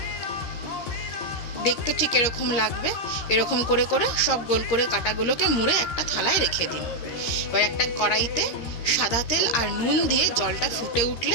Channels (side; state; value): right; late; 13 ms